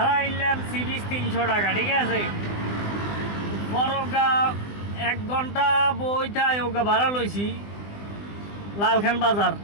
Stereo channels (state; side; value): late; right; 20 ms